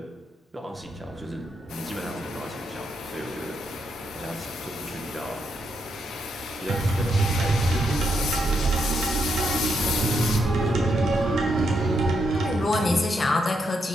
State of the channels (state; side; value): normal; both; correlation 0.80